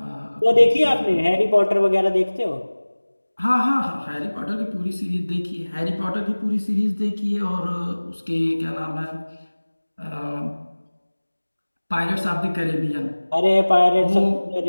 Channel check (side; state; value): both; inverted; correlation -1.00